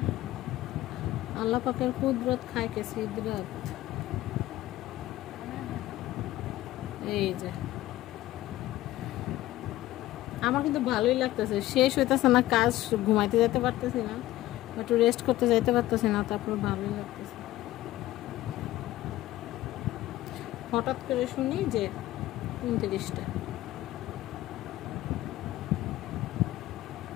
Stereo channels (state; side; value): quieter; right; 15.8 dB